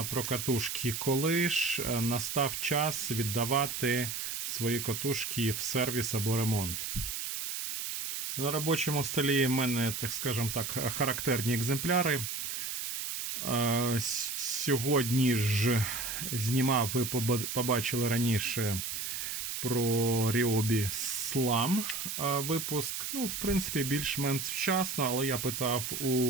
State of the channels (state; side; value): noise; right; hiss, 4 dB below the sound